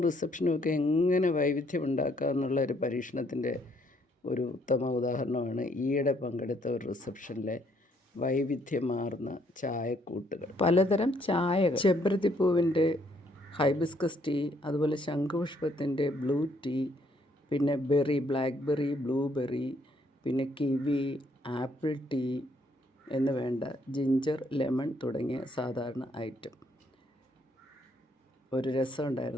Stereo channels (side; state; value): both; normal; correlation 0.68